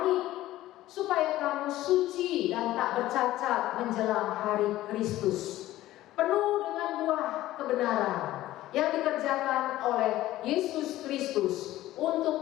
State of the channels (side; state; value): right; quieter; 15.3 dB